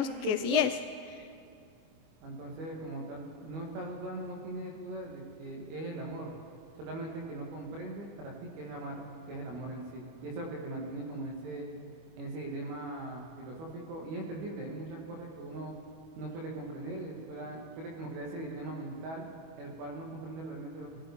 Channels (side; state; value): left; late; 25 ms